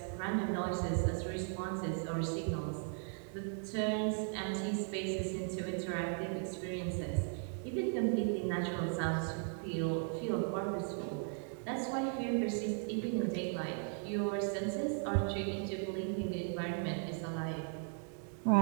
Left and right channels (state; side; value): silent; left; 53 dB below the other